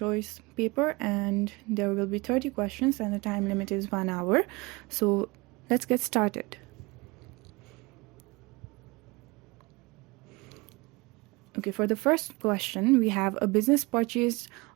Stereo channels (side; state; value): left; quieter; 24.7 dB